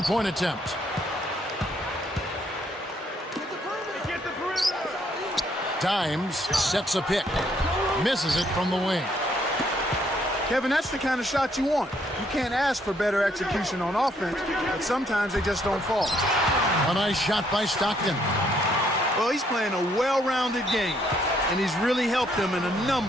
attempt. Dimes sets a pick. Misses it from the wing. Kevin, that's the kind of shot you want. You can't ask for better execution on offense, but sometimes they just don't fall. A nice shot by Stockton. Well, he's playing a well-rounded game, and he's really helped them in a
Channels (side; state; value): both; normal; correlation 0.69